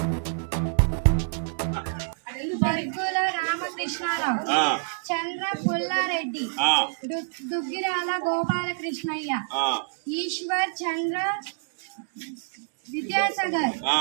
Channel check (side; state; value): left; silent; digital silence